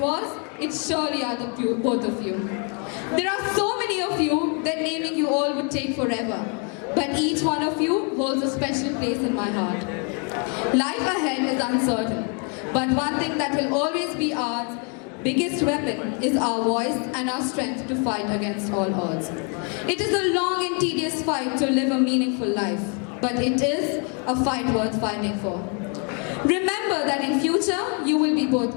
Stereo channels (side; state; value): right; quieter; 37.6 dB